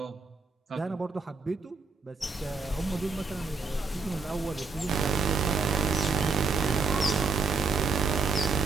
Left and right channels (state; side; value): quieter; left; 4.5 dB